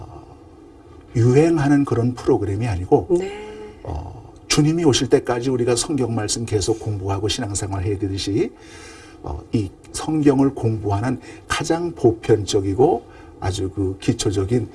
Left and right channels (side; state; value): both; identical; correlation 1.00